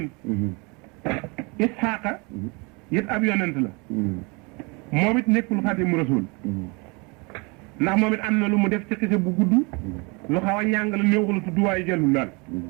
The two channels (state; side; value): quieter; left; 29.4 dB